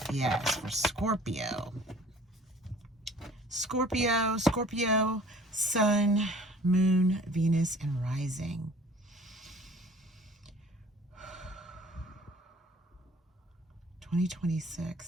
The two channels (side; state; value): both; normal; correlation 0.50